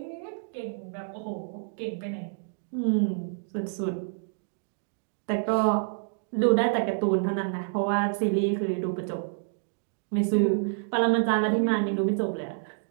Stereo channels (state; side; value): silent; left; digital silence